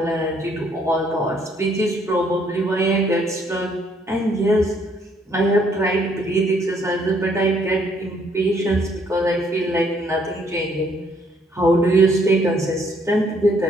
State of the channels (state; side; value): normal; both; correlation 0.67